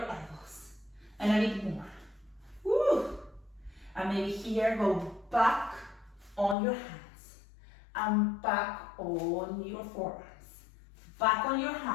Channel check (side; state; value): right; drops out; at 6.6 s